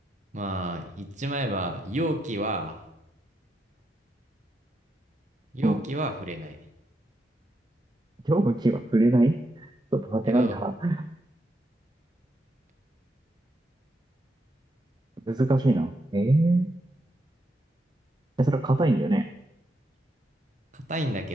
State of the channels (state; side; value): normal; both; correlation 0.82